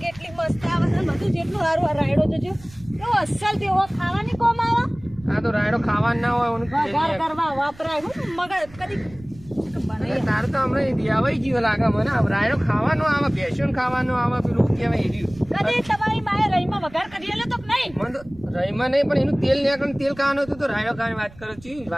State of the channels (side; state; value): right; noise; rumble, 21 dB below the sound